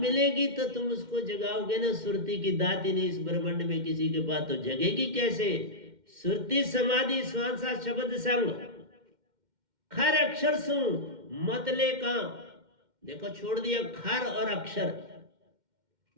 तो तुम उसको जगाओगे ना। सुरती की दात ही नहीं इस ब्रह्मांड में किसी के पास, तो जगेगी कैसे? सुरती समाधि श्वासा शब्द संग खर अक्षर सु मतले का। देखो छोड़ दिया खर और अक्षर,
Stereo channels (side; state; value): left; late; 2.1 ms